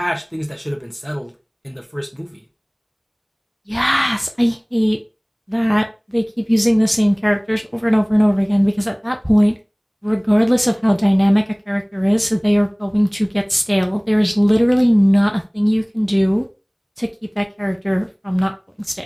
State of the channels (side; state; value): both; identical; correlation 1.00